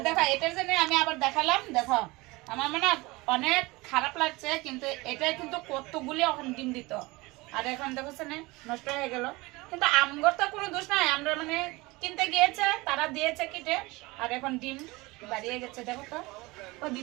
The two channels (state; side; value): quieter; left; 22.7 dB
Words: দেখো এটার জন্য আমি আবার দেখালাম দেখো আমার মানে অনেক খারাপ লাগছে কিন্তু এটা কিন্তু কতগুলি এখন ডিম দিত আর এখন দেখো না নষ্ট হয়ে গেল কিন্তু আমগর তো কোনো দোষ নাই আমরা মানে কিনতে গিয়েছে তারা দিয়েছে কিটে আর এখন ডিম বাড়িয়ে গেছে দেখো তো ও